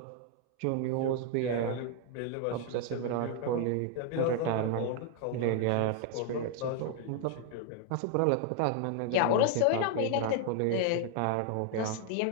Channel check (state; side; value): different; both; correlation 0.00